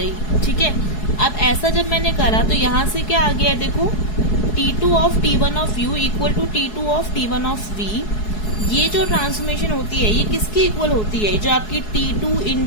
ठीक है। अब ऐसा जब मैंने करा तो यहाँ से क्या आ गया, देखो T2 of T1 of U equal to T2 of T1 of V। ये जो ट्रांसफॉर्मेशन होती है ये किसकी इक्वल होती है, जो आपकी T2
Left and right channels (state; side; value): late; right; 4.7 ms